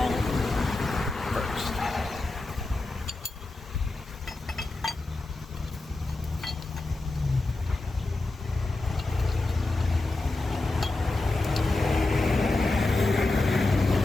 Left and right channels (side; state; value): right; quieter; 3.1 dB